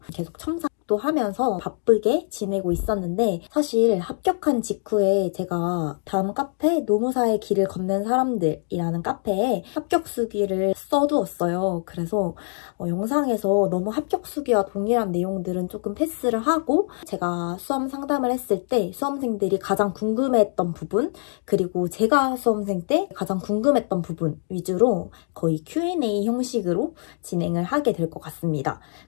계속 첨삭도 하면서 바쁘게 지내고 있었는데, 사실 합격한 직후에 제가 다음 카페 노무사의 길을 걷는 사람들이라는 카페에 합격 수기를 써두었어요. 그래서 영상에서 너무 합격 수기와 동일한 내용들은 조금 패스를 하고, 제가 수험 상담을 했을 때 수험생들이 가장 궁금해했던 부분, 그리고 제가 수험생 때 가장 궁금했던 부분 위주로 거의 Q&A 형식으로 진행을 하게 될 것 같습니다.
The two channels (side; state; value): right; silent; digital silence